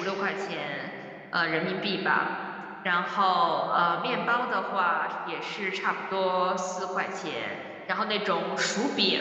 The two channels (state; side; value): identical; both; correlation 1.00